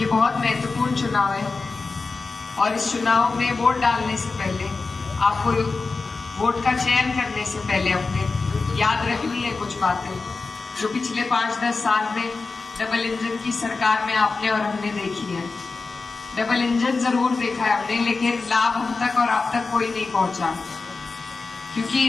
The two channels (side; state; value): right; quieter; 4.1 dB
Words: बहुत महत्वपूर्ण चुनाव है और इस चुनाव में वोट डालने से पहले आपको वोट का चयन करने से पहले अपने याद रखनी है कुछ बातें जो पिछले 5-10 साल में डबल इंजन की सरकार में आपने और हमने देखी है। डबल इंजन जरूर देखा है हमने, लेकिन लाभ हम तक और आप तक कोई नहीं पहुंचा,